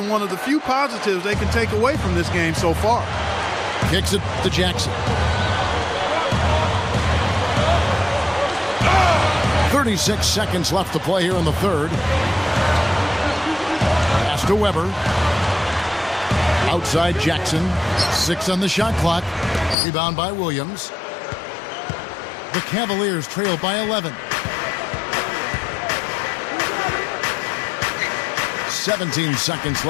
one of the few positives they can take away from this game so far. Kicks it to Jackson. 36 seconds left to play here in the third. Pass to Weber. Outside Jackson. 6 on the shot clock. Rebound by Williams. The Cavaliers trail by 11. 17 seconds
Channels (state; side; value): drops out; right; at 19.8 s